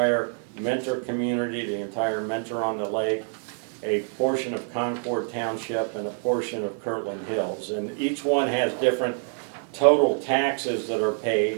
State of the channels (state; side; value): silent; left; 57 dB below the other